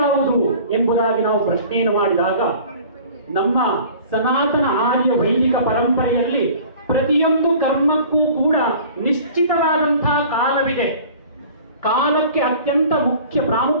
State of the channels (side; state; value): both; inverted; correlation -0.46